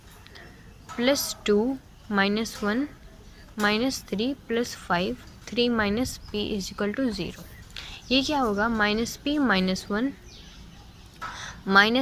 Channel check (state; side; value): identical; both; correlation 1.00